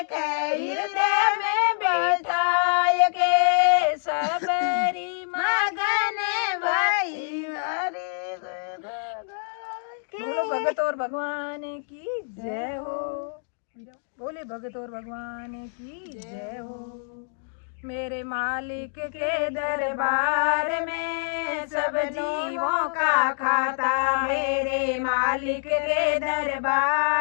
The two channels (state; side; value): silent; right; digital silence